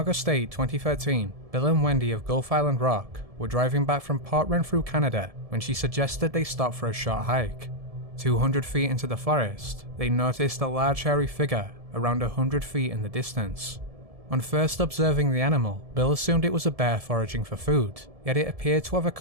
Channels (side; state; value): left; late; 1.7 ms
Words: 8, 2013, Bill and Wendy of Gulf Island Rock were driving back from Port Renfrew, Canada, when she suggested they stop for a short hike. 200 feet into the forest, they noticed a large hairy figure around 100 feet in the distance. On first observing the animal, Bill assumed it was a bear foraging for food, yet it appeared to have a